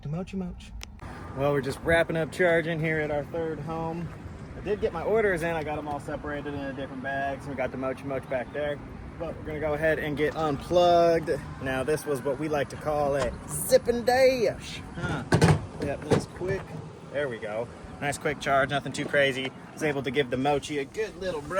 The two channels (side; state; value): both; identical; correlation 1.00